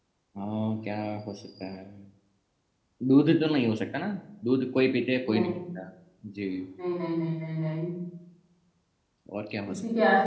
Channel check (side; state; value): both; identical; correlation 1.00